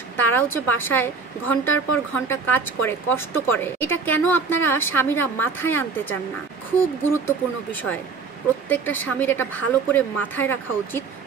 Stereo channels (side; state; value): left; quieter; 4.9 dB